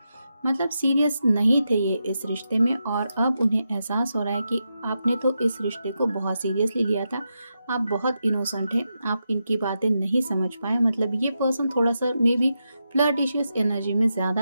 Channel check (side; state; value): both; inverted; correlation -0.87